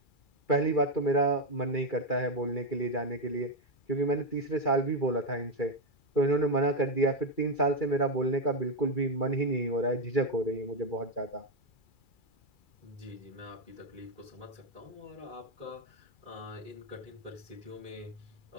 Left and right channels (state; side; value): late; right; 2.4 ms